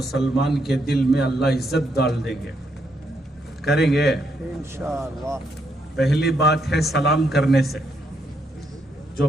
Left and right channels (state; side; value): normal; both; correlation 0.76